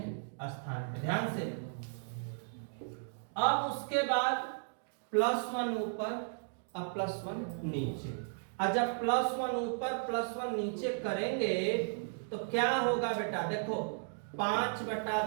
स्थान पे। ध्यान से, अब उसके बाद +1 ऊपर और +1 नीचे। और जब +1 ऊपर +1 नीचे करेंगे तो क्या होगा बेटा, देखो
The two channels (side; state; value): left; silent; digital silence